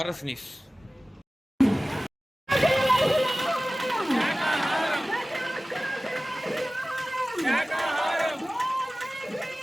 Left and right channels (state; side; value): normal; both; correlation 0.97